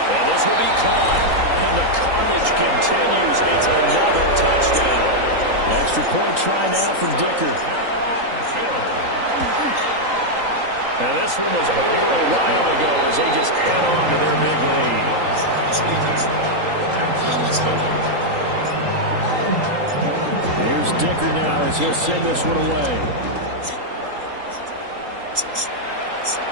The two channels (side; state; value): left; late; 3.8 ms